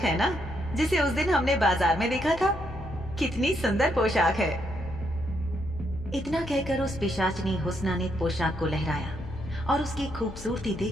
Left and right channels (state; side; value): noise; left; hum, 14 dB below the sound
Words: ना जिसे उस दिन हमने बाजार में देखा था। कितनी सुंदर पोशाक है। इतना कहकर उस पिशाचनी हुस्ना ने पोशाक को लहराया और उसकी खूबसूरती